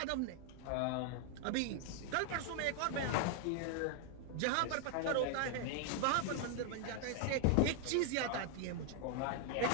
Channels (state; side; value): different; both; correlation 0.00